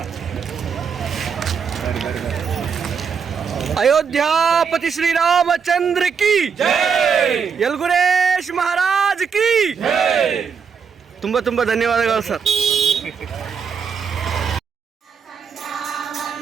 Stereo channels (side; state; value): left; quieter; 6.4 dB